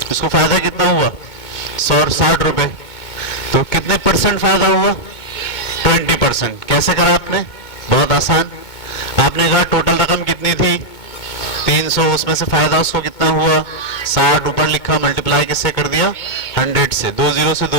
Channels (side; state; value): right; late; 2.2 ms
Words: इसको फायदा कितना हुआ? 160 रुपए। तो कितने परसेंट फायदा हुआ? 20%। कैसे करा आपने? बहुत आसान। आपने कहा टोटल रकम कितनी थी? 300, उसमें से फायदा उसको कितना हुआ? 60। ऊपर लिखा, मल्टीप्लाई किससे कर दिया? 100 से। 2 जीरो से